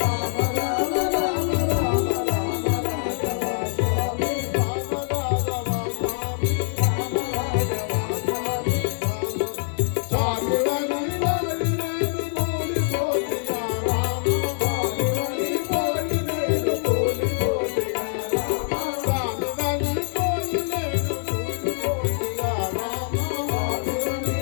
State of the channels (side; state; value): right; silent; 62 dB below the other